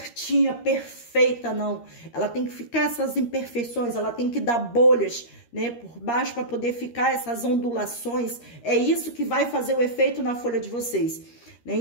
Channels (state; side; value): late; right; 13 ms